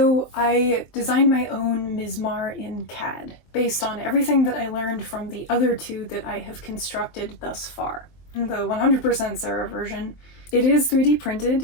I designed my own Mizmar in CAD, based on everything that I learned from the other two that I have constructed thus far. The 100% Sarah version, it is 3D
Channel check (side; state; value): right; late; 23 ms